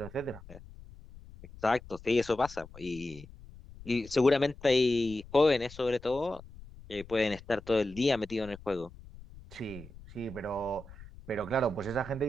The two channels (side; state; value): left; noise; rumble, 18 dB below the sound